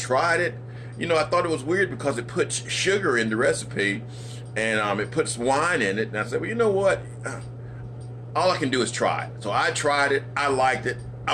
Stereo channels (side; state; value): both; identical; correlation 1.00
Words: it. You know, I thought it was weird because it puts sugar in the recipe, and it puts wine in it. And I said, well, you know what? All I can do is try it. So I tried it. I liked it.